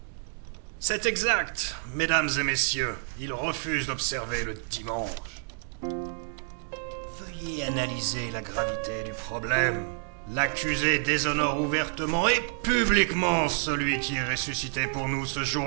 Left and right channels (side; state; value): left; silent; digital silence